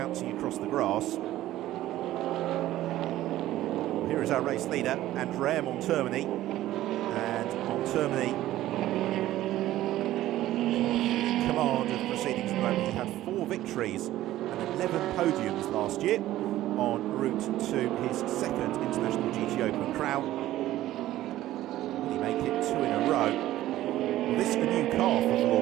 across the grass. Here is our race leader, Andrea Montermini. And Montermini in command of proceedings at the moment. He had 4 victories and 11 podiums last year en route to his second International GT Open crown. Will he make it 2 in a row? Well, this is a new car for the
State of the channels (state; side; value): quieter; left; 14.6 dB